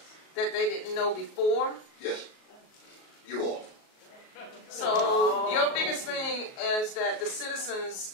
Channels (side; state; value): right; late; 37 ms